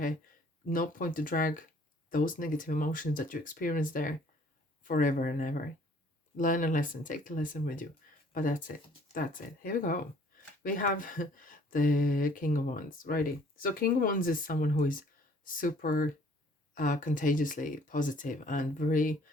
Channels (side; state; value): both; normal; correlation 0.57